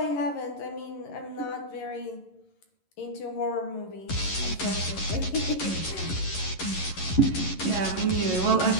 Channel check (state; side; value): late; right; 11 ms